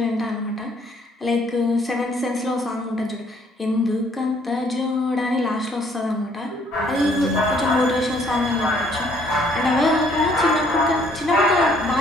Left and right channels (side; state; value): both; normal; correlation 0.63